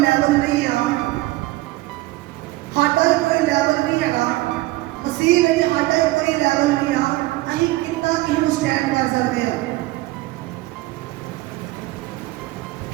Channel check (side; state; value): left; quieter; 18.6 dB